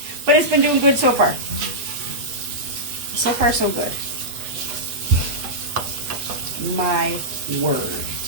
But it's been doing good so far. So far, so good. My word.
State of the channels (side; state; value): left; late; 8.3 ms